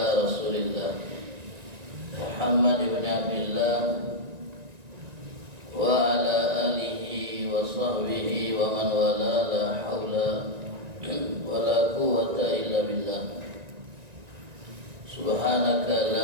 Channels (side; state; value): left; late; 1.9 ms